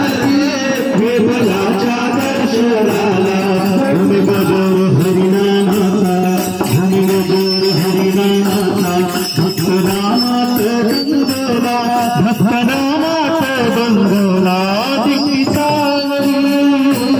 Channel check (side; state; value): both; identical; correlation 1.00